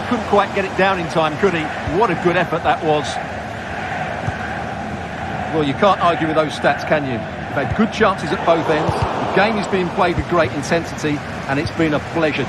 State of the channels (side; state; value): both; identical; correlation 1.00